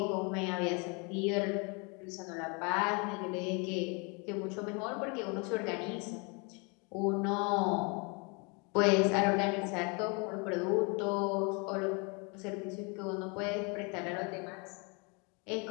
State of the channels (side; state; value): right; quieter; 32.1 dB